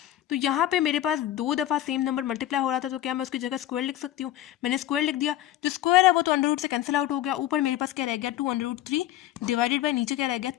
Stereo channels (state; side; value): quieter; right; 13.3 dB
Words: तो यहाँ पे मेरे पास 2 दफ़ा सेम नंबर मल्टीप्लाई हो रहा था, तो क्या मैं उसकी जगह स्क्वायर लिख सकती हूँ, मैंने स्क्वायर लिख दिया, जो स्क्वायर है वो तो अंडर से कैंसिल आउट हो गया, ऊपर मेरे पास क्या रह गया 2√3 डिवाइडेड बाय नीचे क्या रह गया